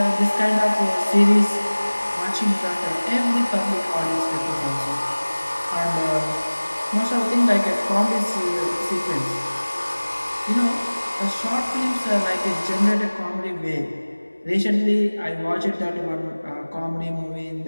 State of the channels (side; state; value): both; inverted; correlation -1.00